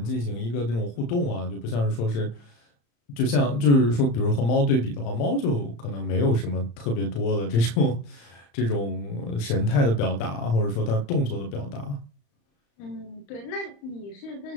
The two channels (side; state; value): right; late; 35 ms